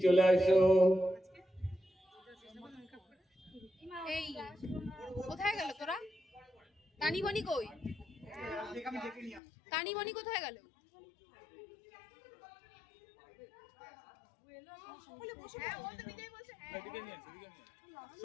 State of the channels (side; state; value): right; drops out; at 9.4 s